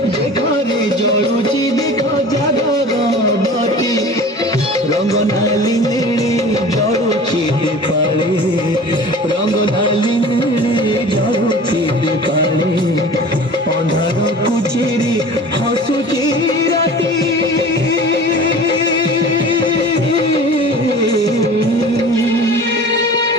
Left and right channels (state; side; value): normal; both; correlation 0.40